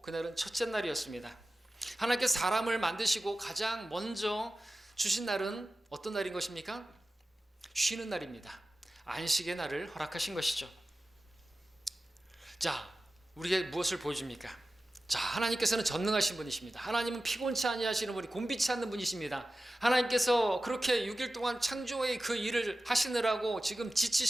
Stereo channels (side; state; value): both; normal; correlation 0.95